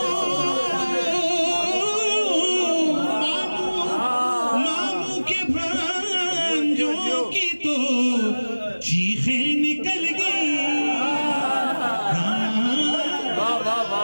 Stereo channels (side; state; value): both; inverted; correlation -1.00